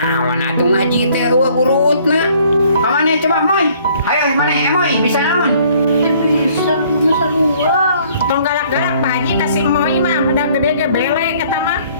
atuh ngaji teh urutna. Pamane coba moy. Ayo maneh moy bisa naon? Bisa, masa luar. Tong galak-galak Pak Haji kasih moy mah udah gede ge belek eta mah.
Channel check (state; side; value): inverted; both; correlation -0.59